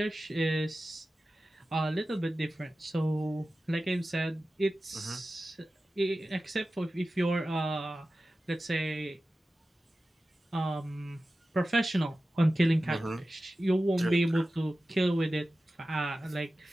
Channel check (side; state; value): both; normal; correlation 0.94